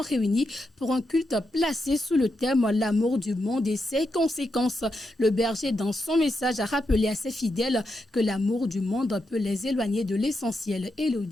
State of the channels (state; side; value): normal; both; correlation 0.85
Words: réunis pour un culte placé sous le thème « L'amour du monde et ses conséquences ». Le berger, dans son message, a rappelé à ses fidèles que l'amour du monde peut les éloigner de l'essentiel.